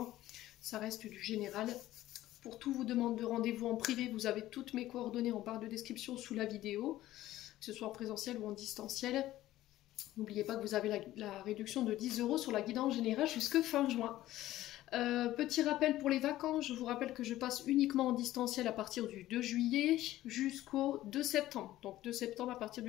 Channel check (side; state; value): right; quieter; 14.9 dB